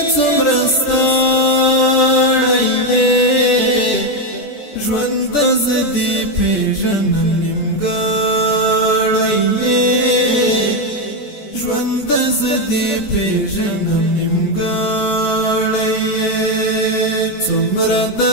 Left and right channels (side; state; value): right; late; 14 ms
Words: څومره ستړی یې ژوند زه دې پېژنم نیمګړی یې ژوند زه دې پېژنم نیمګړی یې څومره